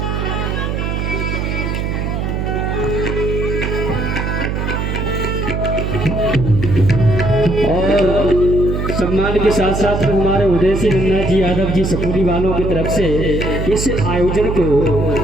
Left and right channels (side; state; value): right; noise; hum, 1 dB below the sound